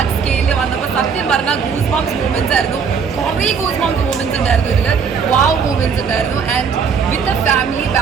സ്കെയിലിൽ വന്നപ്പോൾ സത്യം പറഞ്ഞാൽ ഗൂസ് ബംസ് മൂവ്മെന്റ്സ് ആയിരുന്നു. കുറേ ഗൂസ് ബംസ് മൂവ്മെന്റ്സ് ഉണ്ടായിരുന്നു ഇതിൽ, വാവ് മൂവ്മെന്റ്സ് ഉണ്ടായിരുന്നു. And with a family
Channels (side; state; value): left; quieter; 6.2 dB